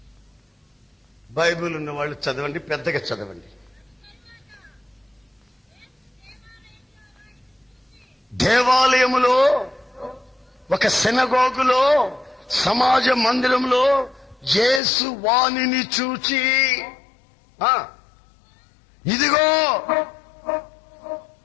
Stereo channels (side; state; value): right; drops out; at 14.8 s